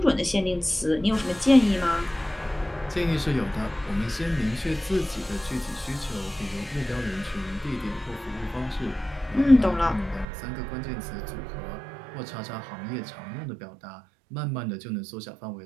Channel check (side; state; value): left; drops out; at 10.2 s